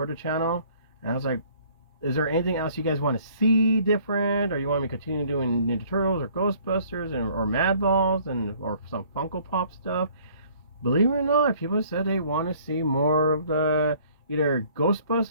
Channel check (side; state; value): both; inverted; correlation -0.57